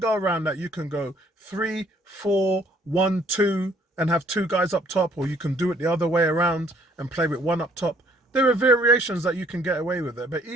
around that. You can go 3, 4, 1, 2 and have 2 guys up top, or you can do it the other way around and play with 1 up top. There are variations that you can get away with it. But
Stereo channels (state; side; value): normal; both; correlation 0.62